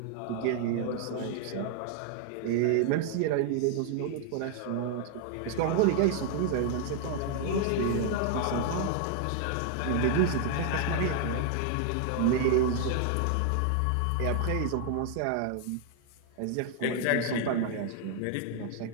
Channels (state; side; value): different; both; correlation 0.00